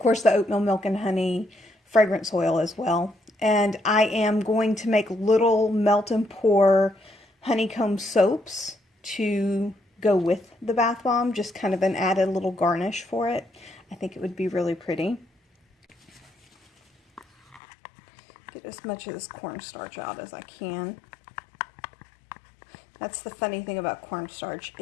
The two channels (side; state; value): right; drops out; at 17.6 s